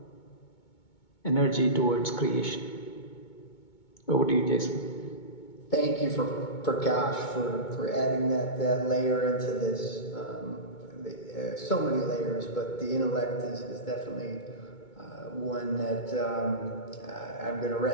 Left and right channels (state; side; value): late; right; 2.2 ms